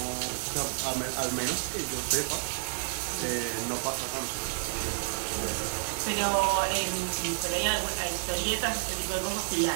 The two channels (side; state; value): left; silent; 58 dB below the other